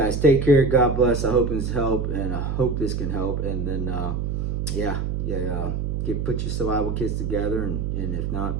take care. God bless. I hope this helped, and I hope this can help. And then put your survival kits together, and if not,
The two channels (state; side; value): noise; right; hum, 1 dB below the sound